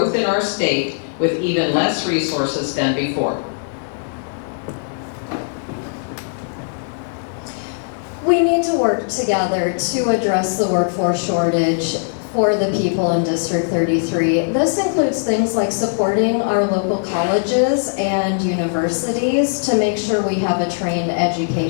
in our state with even less resources than before. We need to work together to address the workforce shortage for the people in District 33. This includes things like supporting our local colleges and universities to make sure we have a trained,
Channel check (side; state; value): right; silent; digital silence